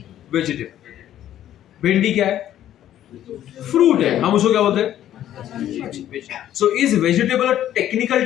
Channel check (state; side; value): quieter; right; 11.7 dB